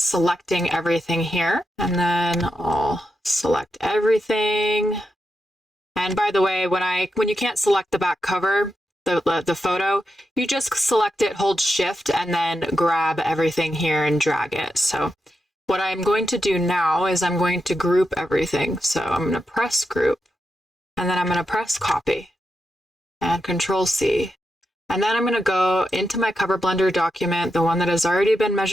everything here, and then I'll select everything. And by the way, when you can't select the back cover, the photo, you just select it, hold shift, and then grab everything here and drag it. So what I'm going to do now is I'm going to group everything. So I'm going to press group, and then I'm going to press copy and Control C. And then I'm going to go into my cover blender document, the one that has already been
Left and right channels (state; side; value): normal; both; correlation 0.86